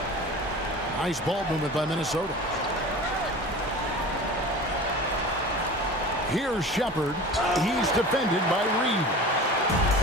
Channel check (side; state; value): both; normal; correlation 0.37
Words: Nice ball movement by Minnesota. Here's Shepard. He's defended by Reeves.